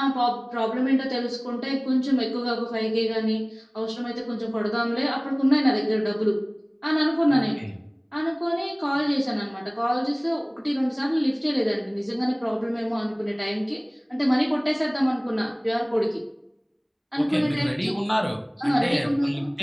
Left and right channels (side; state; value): both; identical; correlation 1.00